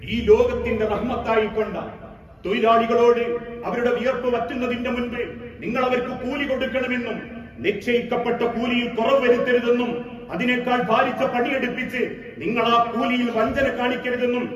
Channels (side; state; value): both; identical; correlation 1.00